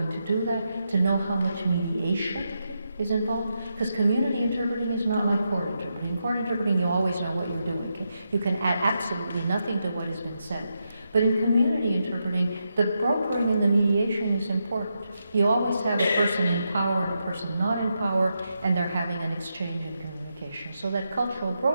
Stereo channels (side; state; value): both; inverted; correlation -0.84